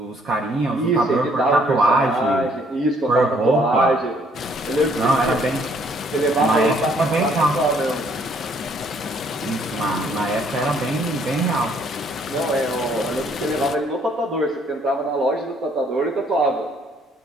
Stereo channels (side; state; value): both; normal; correlation 0.64